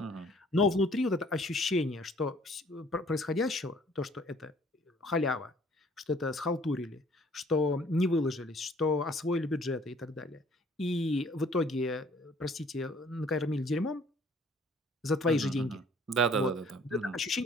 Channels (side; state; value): both; normal; correlation 0.57